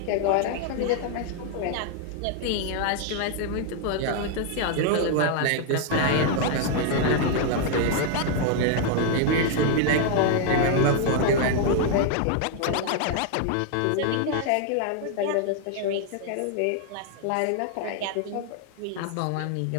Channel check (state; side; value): different; both; correlation 0.00